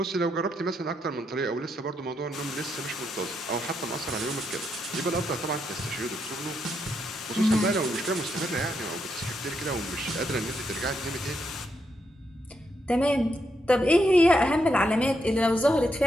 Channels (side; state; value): both; normal; correlation 0.80